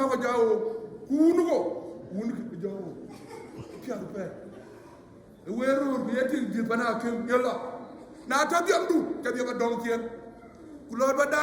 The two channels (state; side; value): identical; both; correlation 1.00